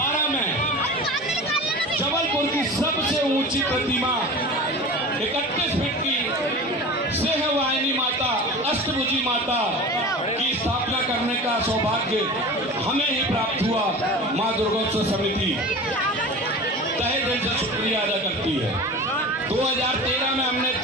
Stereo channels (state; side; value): normal; both; correlation 0.34